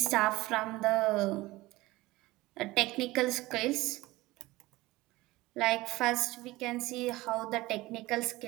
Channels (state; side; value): quieter; left; 19.4 dB